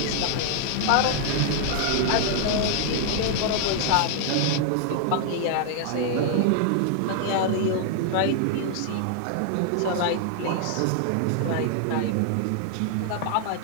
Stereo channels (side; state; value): both; different; correlation 0.00